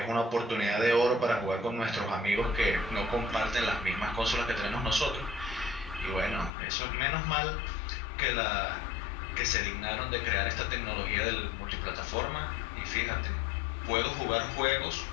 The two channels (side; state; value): right; drops out; at 6.5 s